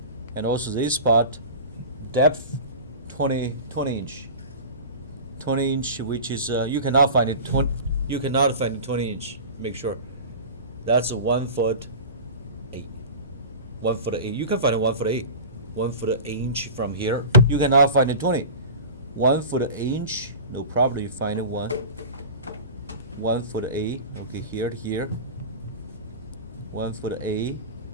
and also this spot, depth 20 inch. 20 inch, which is you cannot find it 20. You cannot find it 20 inch. Make sure that's a 1 foot 8. 1 foot 8. You can find it 1 foot 8. 1 foot 8 inch from here. You cannot find it 20. 1 foot 8 inch. No problem. You find it 1 foot 8. Okay, here. 1 foot 8.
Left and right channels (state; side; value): inverted; both; correlation -0.33